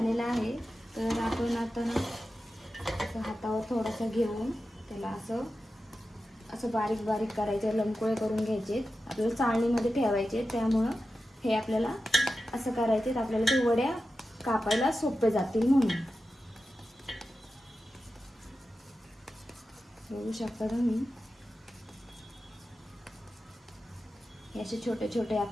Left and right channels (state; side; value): normal; both; correlation 0.92